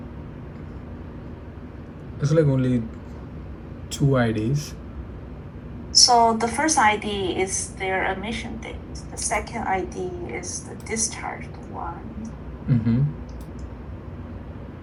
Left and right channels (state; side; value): identical; both; correlation 1.00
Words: It's like only 2 IDs. So the first ID is their emission date. The second ID is the discharged one.